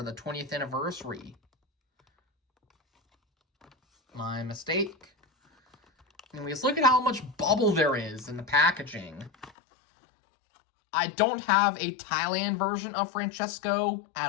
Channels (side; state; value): right; drops out; at 9.5 s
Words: the 20th anniversary. My mistake. Anyways, look at how much bubble there is in the packaging. I don't have a Thailand version of Francesco